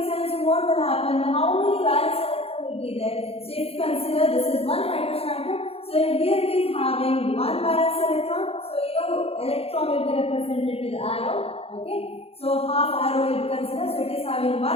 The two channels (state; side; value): late; right; 0.29 ms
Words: sense what will happen? How many valence will be there? So if you consider this is one hydrogen atom, so here it is having one valence electron. So electron will be represented with arrow. Okay, so half arrow will be considered. So it is having